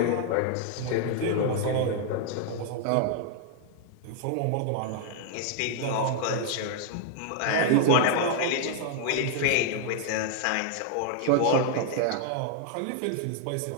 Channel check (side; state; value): both; different; correlation 0.00